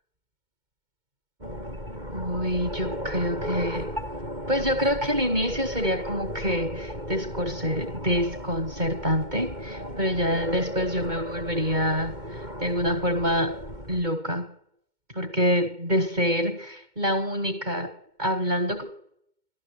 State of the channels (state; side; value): late; left; 2.2 ms